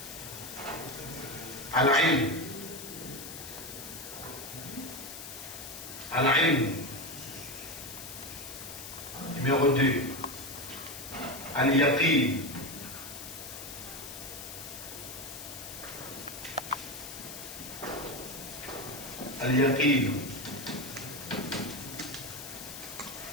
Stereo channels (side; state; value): left; noise; hiss, 10 dB below the sound